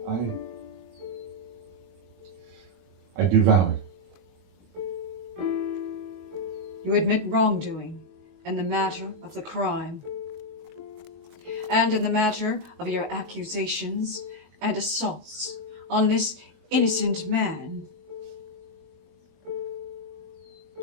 I do vow it. You admit wrongdoing in the matter of the crime, and in the matter of your accusations and assaults on this innocent man.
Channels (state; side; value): late; left; 22 ms